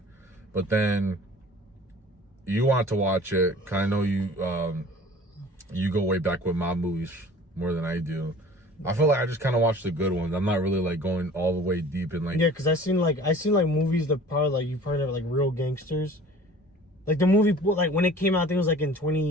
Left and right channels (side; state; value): both; normal; correlation 0.46